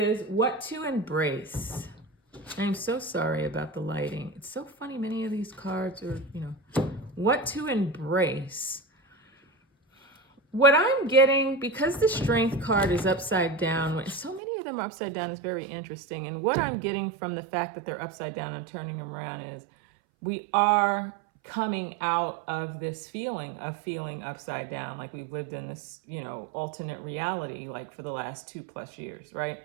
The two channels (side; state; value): left; drops out; at 14.4 s